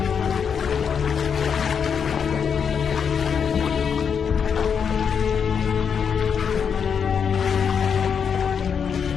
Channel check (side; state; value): right; quieter; 6.9 dB